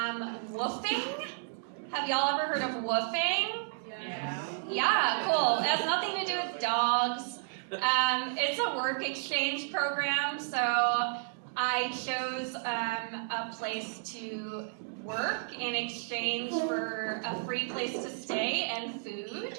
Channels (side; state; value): left; silent; digital silence